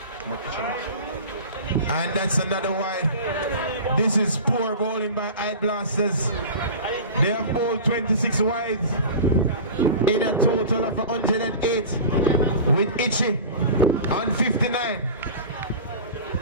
And that's another wide. This is poor bowling by HYDE Blasters. They have bowled 26 wides. in a total of 108 with Itchy on 59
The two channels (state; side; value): inverted; both; correlation -0.34